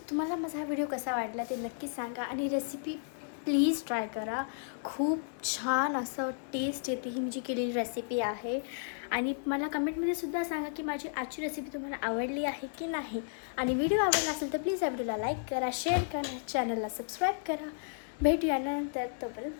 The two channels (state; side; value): silent; right; digital silence